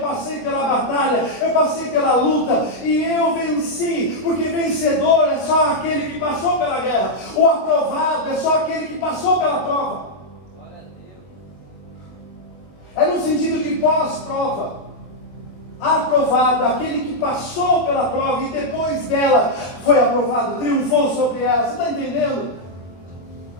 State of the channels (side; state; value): right; late; 22 ms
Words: pela batalha, eu passei pela luta e eu venci, porque vencedor é só aquele que passou pela guerra, o aprovado é só aquele que passou pela prova. É no sentido de pós-prova. Aprovado, aquele que passou pela prova e depois dela foi aprovado, triunfou sobre ela. Você está entendendo?